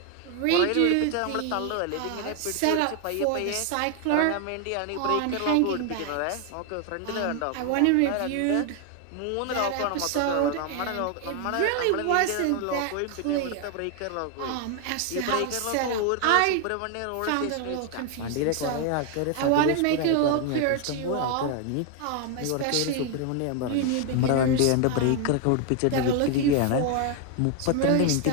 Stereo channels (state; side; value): different; both; correlation 0.01